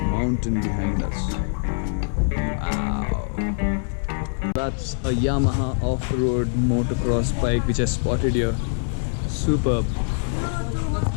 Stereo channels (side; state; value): right; silent; 63 dB below the other